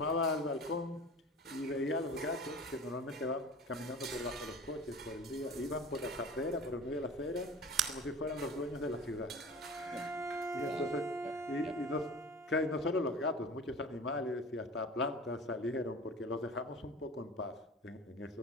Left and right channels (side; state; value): both; normal; correlation 0.38